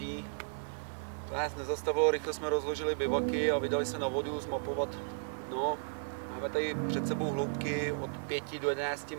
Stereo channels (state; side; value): silent; left; 55 dB below the other